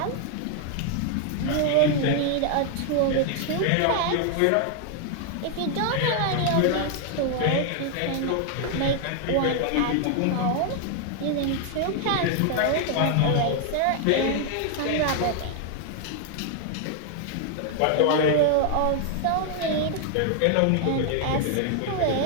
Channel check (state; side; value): different; both; correlation 0.00